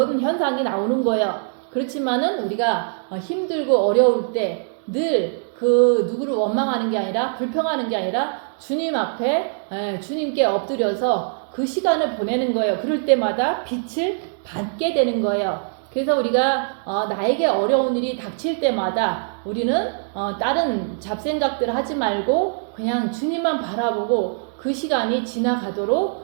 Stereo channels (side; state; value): left; silent; digital silence